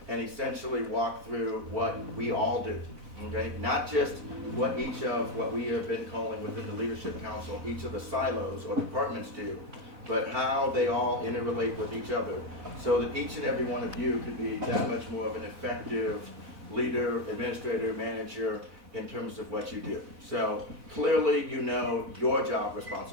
and essentially walk through what we all do? Okay, not just what we have been calling within the Leadership Council, each of the silos or departments do, but how they all interrelate with each other, so that each and every one of you could be that much more of an effective leader, administrator, manager in terms of what you do. So clearly you know your job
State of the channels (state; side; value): late; left; 4.0 ms